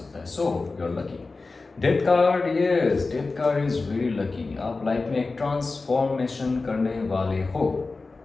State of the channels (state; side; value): quieter; right; 3.7 dB